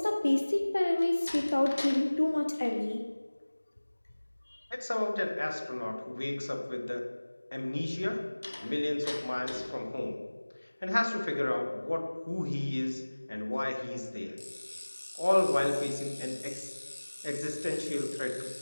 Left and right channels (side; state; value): both; inverted; correlation -1.00